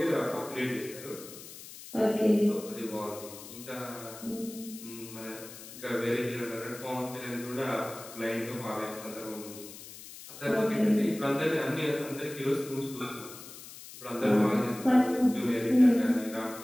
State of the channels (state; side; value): noise; left; hiss, 15 dB below the sound